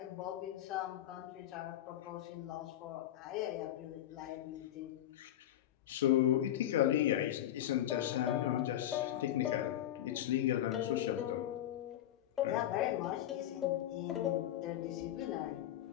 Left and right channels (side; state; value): right; quieter; 12.2 dB